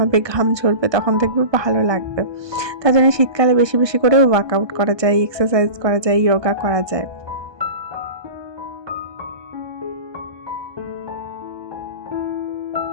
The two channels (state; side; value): late; left; 1.2 ms